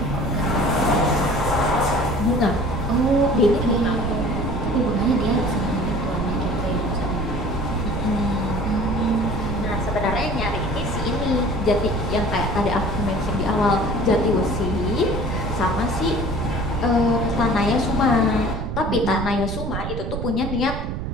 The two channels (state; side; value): noise; right; rumble, 4 dB below the sound